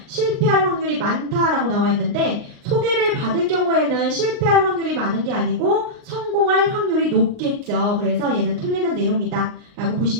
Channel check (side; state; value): left; late; 39 ms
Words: 실패할 확률이 많다라고 나와 있는데 소개를 받을 경우에는 실패할 확률이 많은 게 아니고 성공할 확률이 높겠죠. 그래서 얘는 틀리는 내용이다 라고